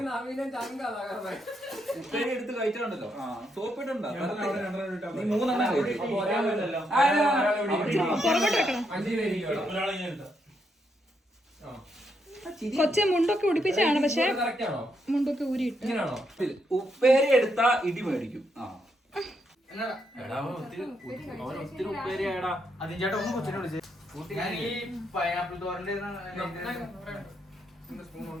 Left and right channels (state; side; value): normal; both; correlation 0.78